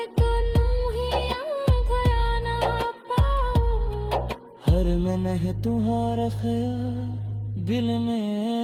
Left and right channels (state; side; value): identical; both; correlation 1.00